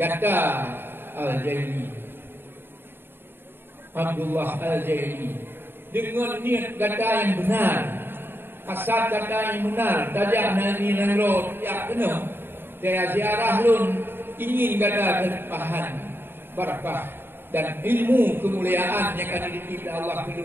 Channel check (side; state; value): left; late; 0.10 ms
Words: kata Al-Zaini, Abdullah Al-Zaini, dengan niat kata yang benar, asal kata yang benar, tajak nani nangro, ya benar, saya ziarah lun ingin kata terpahan, barakah. Dan ilmu kemuliaan yang akan dititip Allah